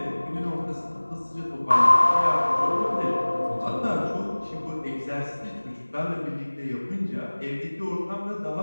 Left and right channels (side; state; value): both; inverted; correlation -1.00